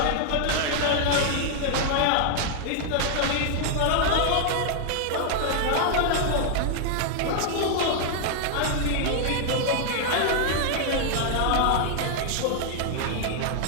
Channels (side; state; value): both; different; correlation 0.00